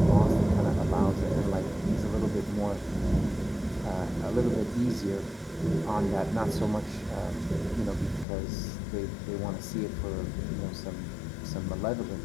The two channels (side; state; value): right; drops out; at 8.2 s